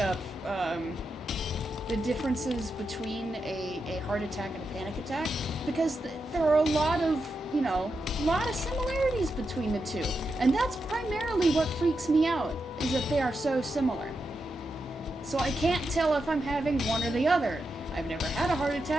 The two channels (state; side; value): normal; both; correlation 0.87